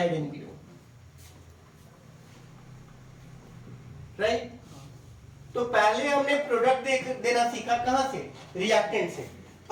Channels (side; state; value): both; identical; correlation 1.00